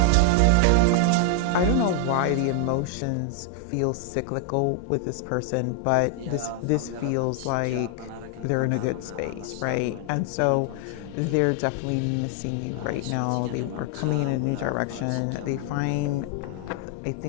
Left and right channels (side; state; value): both; different; correlation 0.00